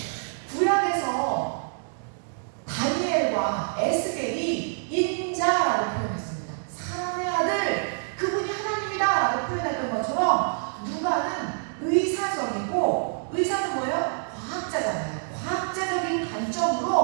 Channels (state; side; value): silent; left; digital silence